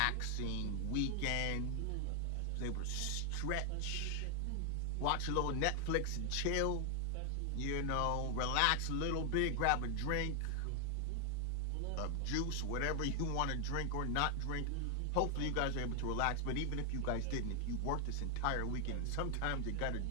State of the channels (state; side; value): different; both; correlation 0.00